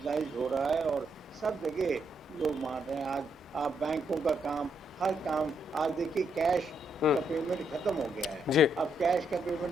हो रहा है और सब जगह लोग मान रहे हैं। आज आप बैंकों का काम, हर काम, आज देखिए कैश का पेमेंट खत्म हो गया है। जी। अब कैश का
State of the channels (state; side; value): normal; both; correlation 0.76